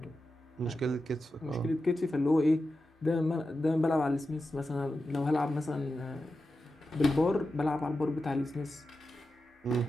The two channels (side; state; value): both; normal; correlation 0.91